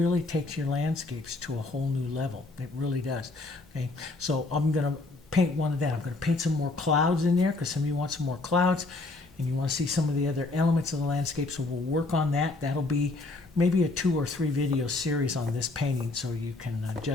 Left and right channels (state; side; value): quieter; right; 3.3 dB